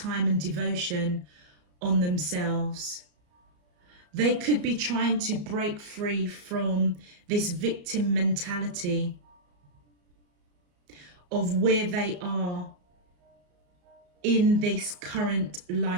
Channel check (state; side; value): late; left; 34 ms